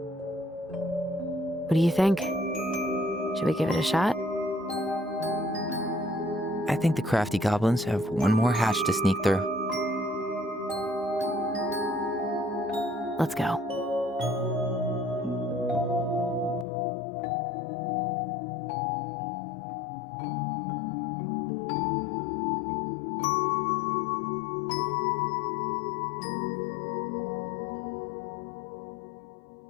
do you think? Should we give it a shot? I think the crafty goblins have one more hatch to sneak through. Let's go.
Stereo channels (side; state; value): right; drops out; at 16.7 s